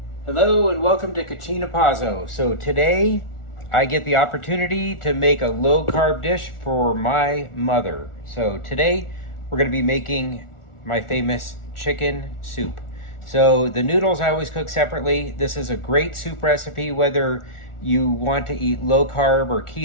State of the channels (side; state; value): right; late; 1.4 ms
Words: Hello and welcome to Cucina Pazzo. So today I get the opportunity to make a low carb dish for my mother. So today we're going to be making my famous chicken soup. So the noodles I always cook separately. This is a great soup recipe whether you want to eat low carb or